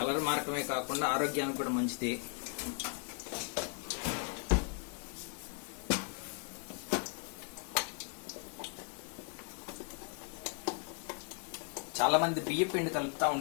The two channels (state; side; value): quieter; right; 39.3 dB